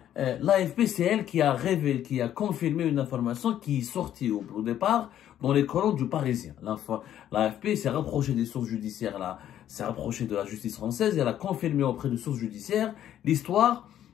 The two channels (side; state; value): right; quieter; 11.2 dB